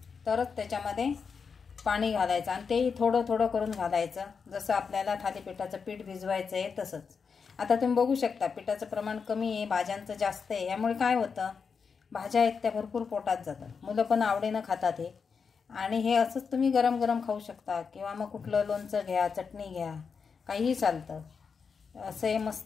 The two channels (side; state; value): right; quieter; 5.7 dB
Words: तरच त्याच्यामध्ये पाणी घालायचं आणि तेही थोडं करून घालायचं, जसं आपल्याला थालीपीठाचं पीठ भिजवायचं आहे तसंच। आता तुम्ही बघू शकता पिठाचं प्रमाण कमी आहे, भाज्यांचं जास्त आहे, यामुळे काय होतं भाज्या आहेत त्या भरपूर पोटात जातात, मुलं पण आवडीनं खातात हे। आणि हे असंच तुम्ही गरम खाऊ शकता किंवा मग कुठलं लोणचं घ्या, चटणी घ्या, काहीही चालतं। असं हे